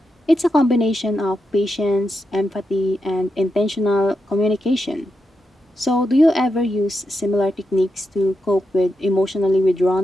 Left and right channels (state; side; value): normal; both; correlation 0.86